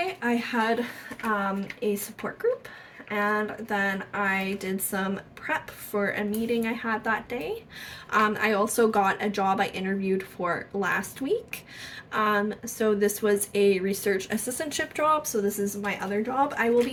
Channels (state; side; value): identical; both; correlation 1.00